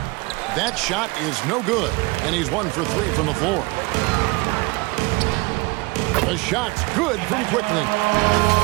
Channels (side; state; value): left; quieter; 24.0 dB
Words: That shot is no good, and he's 1 for 3 from the floor. The shot's good from Quickly.